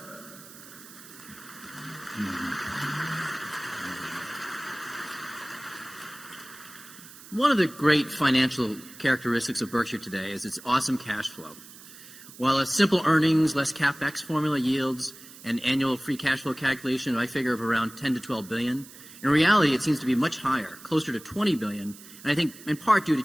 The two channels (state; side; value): noise; right; hiss, 18 dB below the sound